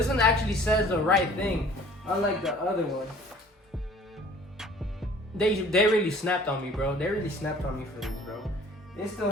one actually says the right thing, unlike the other one. They really snapped on me, bro. They really snapped on me for this, bro. It still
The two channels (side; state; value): both; normal; correlation 0.51